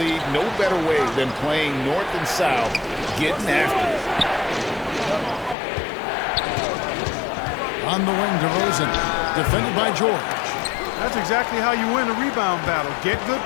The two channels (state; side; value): drops out; right; at 5.6 s